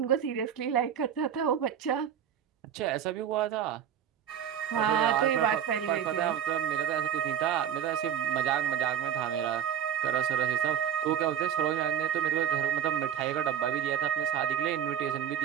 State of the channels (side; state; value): left; quieter; 9.2 dB